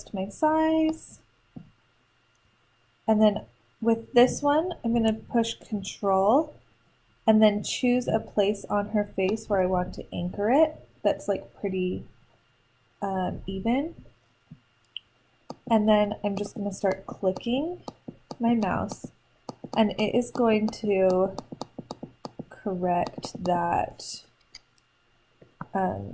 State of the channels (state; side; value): identical; both; correlation 1.00